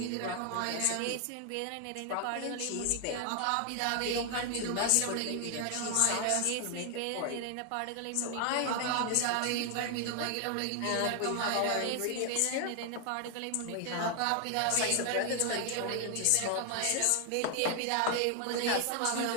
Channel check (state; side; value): different; both; correlation 0.00